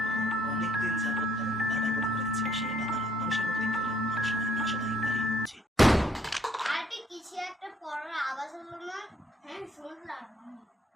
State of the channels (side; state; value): both; normal; correlation 0.66